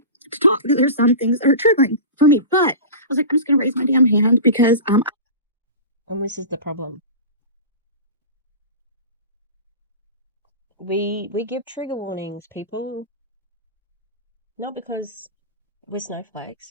Because there's some things that are triggering for me. But I was like, I'm just gonna raise my damn hand because and this is the problem. We give trigger warnings, people. Not because we're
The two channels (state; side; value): inverted; both; correlation -0.31